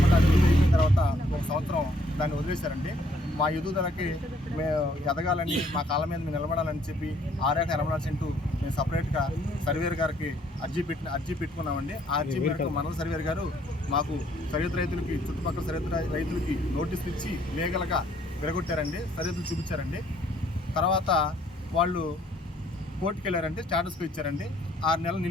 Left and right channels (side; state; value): both; normal; correlation 0.65